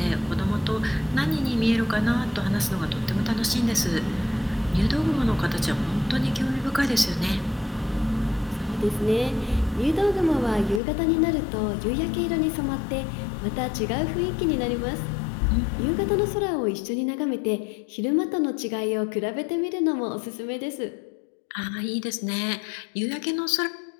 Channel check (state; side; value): drops out; right; at 10.8 s